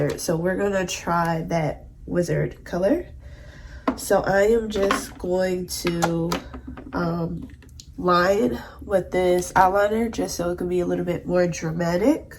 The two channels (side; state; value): both; identical; correlation 1.00